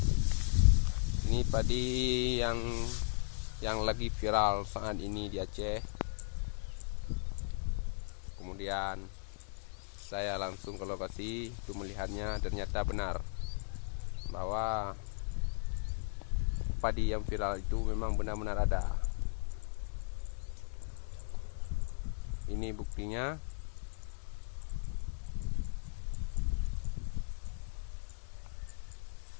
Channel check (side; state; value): right; silent; 53 dB below the other